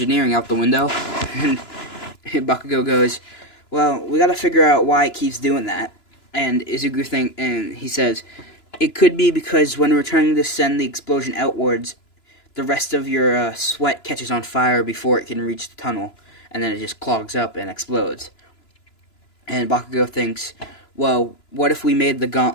out the window." And Bakugo goes, "Well, we gotta figure out why it keeps doing that." And he says, "It could be because when we're trying to send the explosion outwards, the rest of your sweat catches on fire before it can reach the tunnel, and then it just clogs up and explodes." And Bakugo thinks, "Well, what if we made the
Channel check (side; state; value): right; late; 2.9 ms